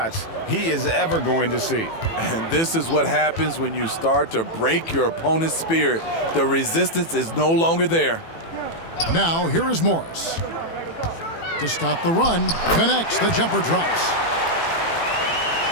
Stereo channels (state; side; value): late; right; 18 ms